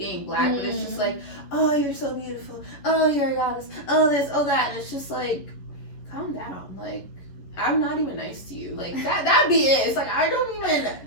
black, but it's just like, oh, you're so beautiful, oh, you're a goddess, oh this, oh that, and it's just like, calm down, like, I'm not even nice to you. Like, that'd be it. It's like, I don't even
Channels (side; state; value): right; late; 11 ms